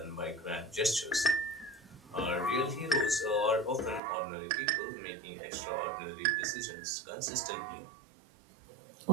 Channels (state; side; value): drops out; left; at 4.0 s